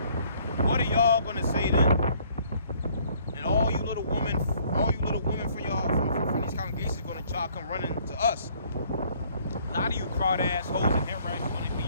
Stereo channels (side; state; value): both; inverted; correlation -0.62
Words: What are y'all gonna say then? And all you little women from these congregations are gonna try to come running to us. A lot of you crowd ass hoes and hair rats are gonna be